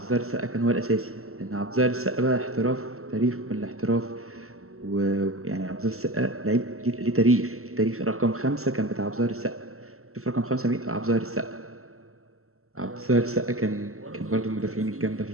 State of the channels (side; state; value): left; late; 0.63 ms